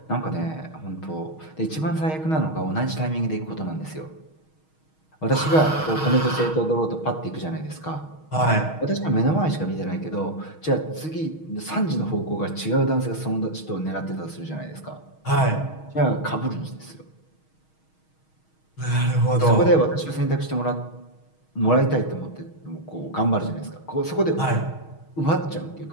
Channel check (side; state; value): right; late; 6.4 ms